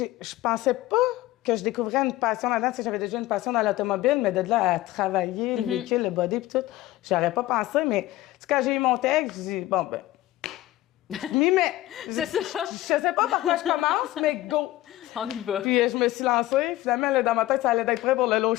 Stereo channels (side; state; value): right; quieter; 16.5 dB